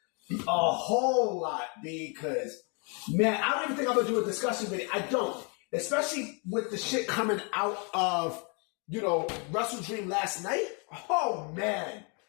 A whole lot, because, man, I don't even think I'm going to do a discussion video. I don't. Especially with the shit coming out of, Wrestle Dream last night. Oh, man.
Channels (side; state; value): right; quieter; 35.2 dB